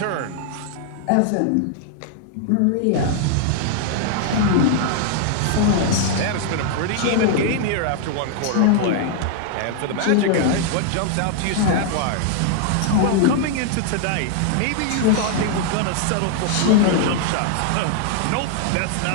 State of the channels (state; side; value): different; both; correlation 0.00